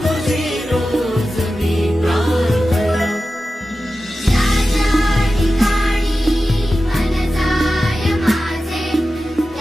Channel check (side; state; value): both; normal; correlation 0.93